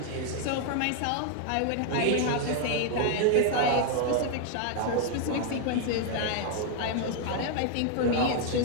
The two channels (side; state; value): both; different; correlation 0.00